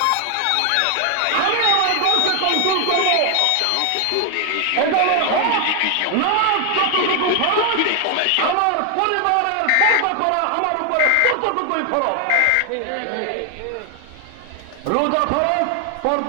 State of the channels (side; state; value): both; different; correlation 0.00